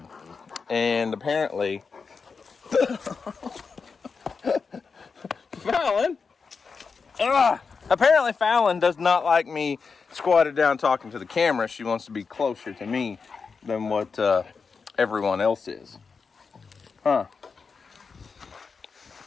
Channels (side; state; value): right; quieter; 5.1 dB